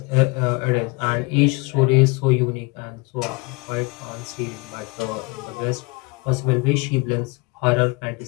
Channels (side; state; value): right; quieter; 26.5 dB